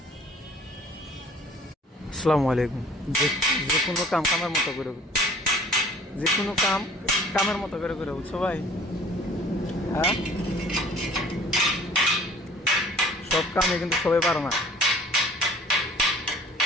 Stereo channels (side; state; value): both; normal; correlation 0.51